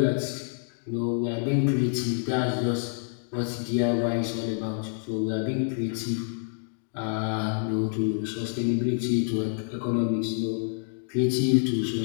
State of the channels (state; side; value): silent; right; digital silence